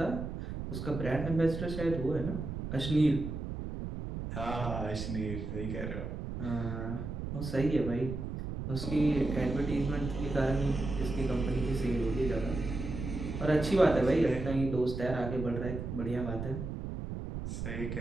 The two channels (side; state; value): right; noise; rumble, 5 dB below the sound